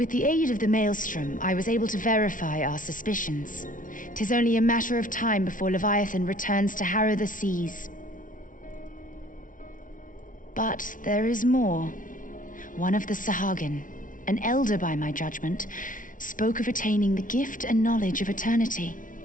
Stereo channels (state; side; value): late; right; 0.38 ms